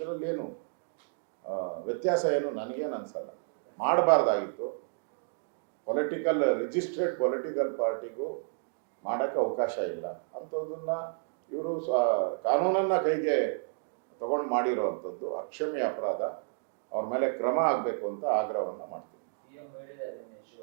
ಏನು ವ್ಯತ್ಯಾಸ ಏನು ನನಗೇನು ಅನ್ಸಲ್ಲ. ಮಾಡಬಾರ್ದಾಗಿತ್ತು. ರಿಜಿಸ್ಟ್ರೇಡ್ ಪೊಲಿಟಿಕಲ್ ಪಾರ್ಟಿಗೂ ಮಾಡೋಕ್ಕೆ ಅವಕಾಶ ಇಲ್ಲ. ಅಂಥದ್ದನ್ನ ಇವರು ಕಾನೂನನ್ನ ಕೈಗೆ ತಗೊಂಡು ಮಾಡಿರೋವಂಥದ್ದು ಅಕ್ಷಮ್ಯ ಅಪರಾಧ. ಅವ್ರ ಮೇಲೆ ಕ್ರಮ ಆಗಬೇಕು ಅಂತ ಆಗ್ರಹವನ್ನು ಮಾಡ್ತೀವಿ.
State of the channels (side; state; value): left; silent; digital silence